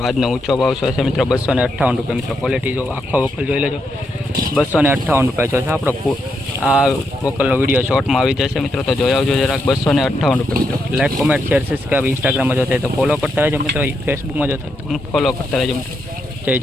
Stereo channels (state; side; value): normal; both; correlation 0.81